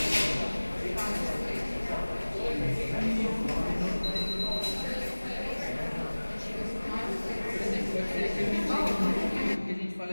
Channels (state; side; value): inverted; both; correlation -1.00